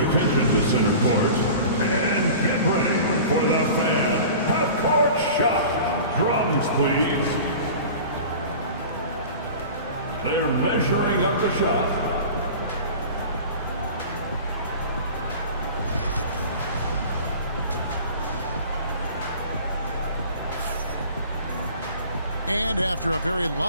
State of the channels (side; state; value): both; inverted; correlation -0.39